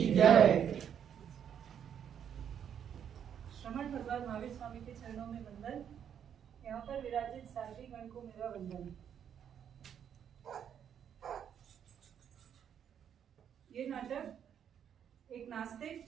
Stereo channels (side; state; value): left; quieter; 8.7 dB